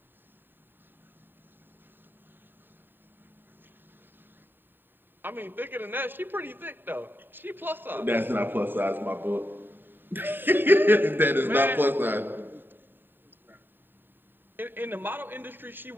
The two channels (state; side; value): late; left; 0.094 ms